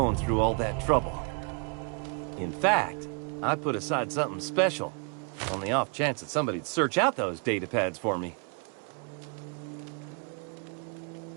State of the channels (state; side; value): quieter; left; 37.9 dB